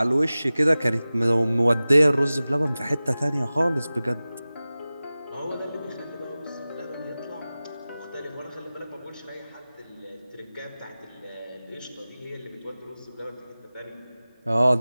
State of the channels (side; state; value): both; inverted; correlation -0.97